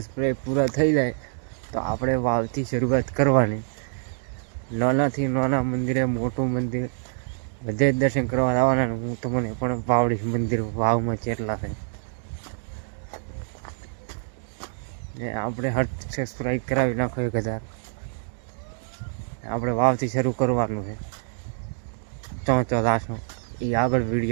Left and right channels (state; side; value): silent; left; 59 dB below the other